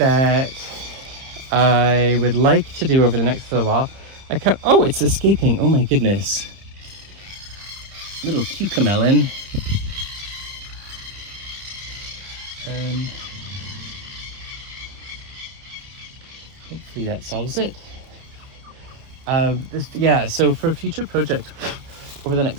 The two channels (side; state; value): left; late; 30 ms